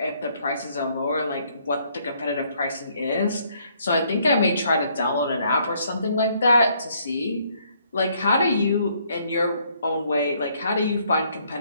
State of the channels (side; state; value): both; inverted; correlation -0.68